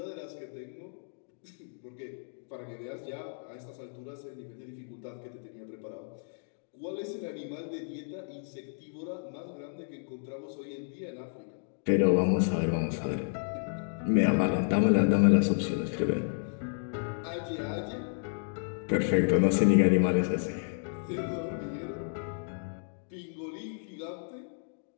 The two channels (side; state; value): right; silent; digital silence